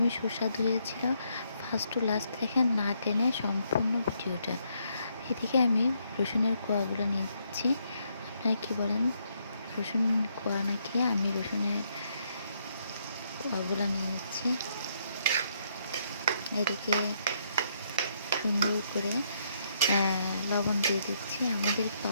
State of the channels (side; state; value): both; inverted; correlation -0.74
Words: সুস্বাদু হয়েছিল। ফার্স্ট টু লাস্ট দেখেন না টেনে সম্পূর্ণ ভিডিওটা। এদিকে আমি রসুনের কোয়াগুলো নিচ্ছি। আপনারা কি বলেন? রসুন কোয়া নাকি? আমি রসুনের কোয়াগুলো নিয়ে নিচ্ছি। এদিকে সুন্দর করে লবণ দিয়ে দিচ্ছি। আমাদের